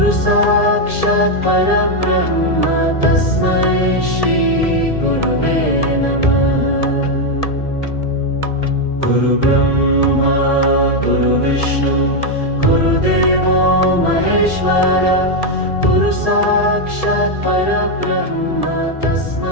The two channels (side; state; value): right; late; 1.7 ms